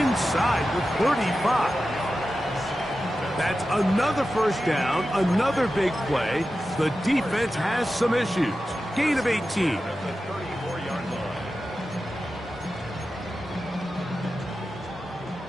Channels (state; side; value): normal; both; correlation 0.92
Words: the 35. That's another first down, another big play. The defense has some issues. Gain of 18.